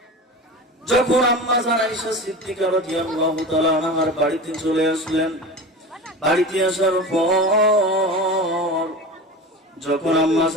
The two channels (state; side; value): normal; both; correlation 0.30